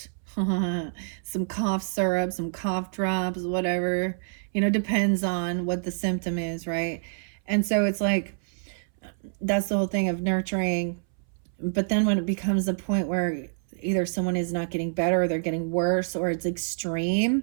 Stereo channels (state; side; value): silent; left; 60 dB below the other